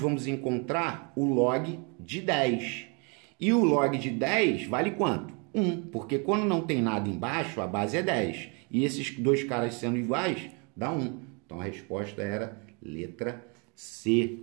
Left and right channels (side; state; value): left; quieter; 34.0 dB